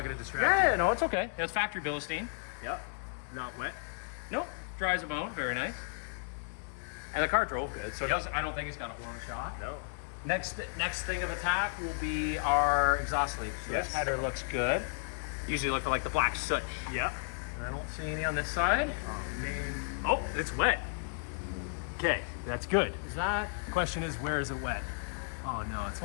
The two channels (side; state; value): right; silent; digital silence